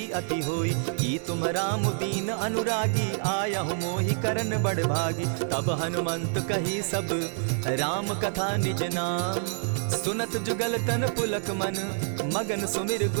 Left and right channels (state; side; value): silent; left; digital silence